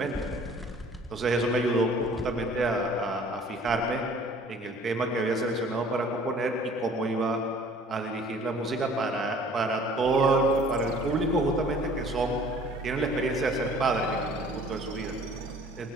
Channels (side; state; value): both; normal; correlation 0.52